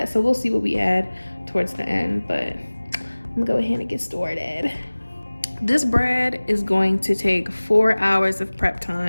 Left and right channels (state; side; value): inverted; both; correlation -1.00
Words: So we'll see what we add towards the end, but I'm gonna go ahead and get started. This bread is going to take 4 hours of prep